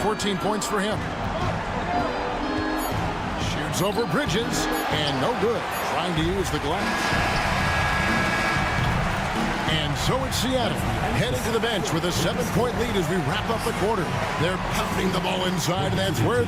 points for him. Shoots over Bridges, and no good. Trying to use the glass. And so it's Seattle, headed to the bench with a 7-point lead as we wrap up the quarter. They're pounding the ball inside, and that's where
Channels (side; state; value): both; identical; correlation 1.00